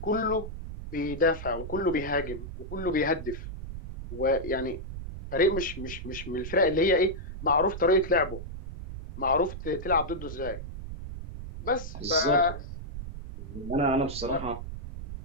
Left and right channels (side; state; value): right; noise; rumble, 9 dB below the sound